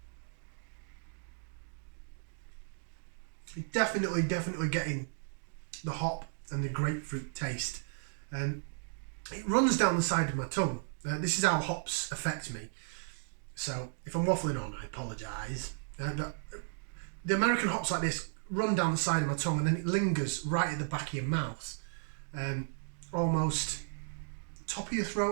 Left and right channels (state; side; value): silent; left; digital silence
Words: You're definitely getting the hop and the grapefruit taste. It runs down the side of my tongue. This is how hops affect me. So, if I'm waffling on, I apologise. But the American hops like this run down the side of my tongue and then it lingers right at the back of your mouth. Almost top of your